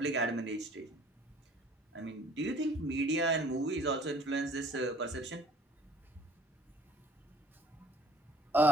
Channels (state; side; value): normal; both; correlation 0.54